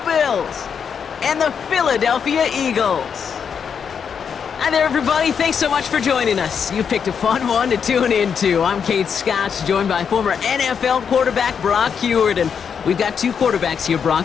Bills and the Philadelphia Eagles. Hi there, everybody. Thanks so much for joining us. You picked a fun one to tune into. I'm Kate Scott, joined by former NFL quarterback Brock Huard. And we've got two quarterbacks here, Brock,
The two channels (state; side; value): quieter; right; 6.9 dB